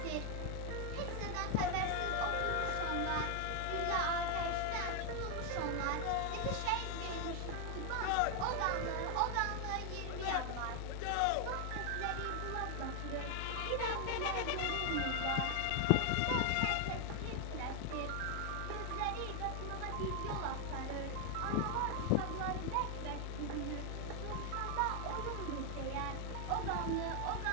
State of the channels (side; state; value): both; different; correlation 0.00